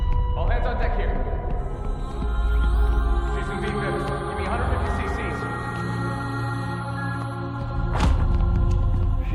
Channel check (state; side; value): identical; both; correlation 1.00